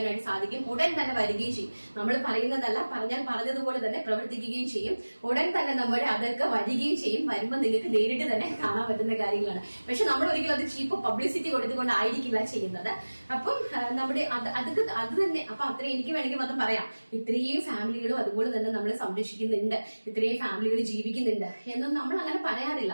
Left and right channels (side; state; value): both; inverted; correlation -1.00